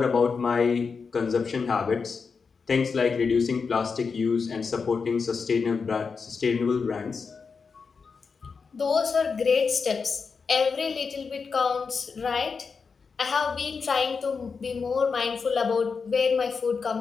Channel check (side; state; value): right; quieter; 5.2 dB